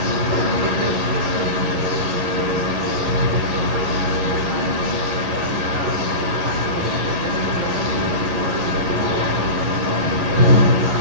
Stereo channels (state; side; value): late; left; 11 ms